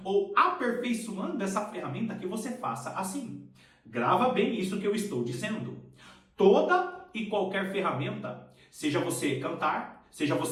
ou aperfeiçoando essa ferramenta, que você faça assim. Grava bem isso que eu estou dizendo. Toda e qualquer ferramenta, seja você cantar, seja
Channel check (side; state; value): both; identical; correlation 1.00